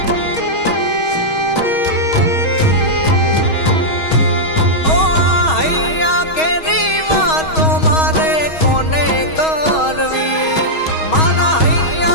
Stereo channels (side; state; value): right; late; 6.3 ms